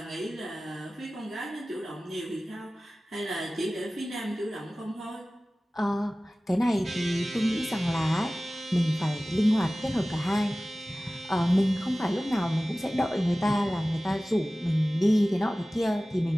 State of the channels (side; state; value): both; normal; correlation 0.97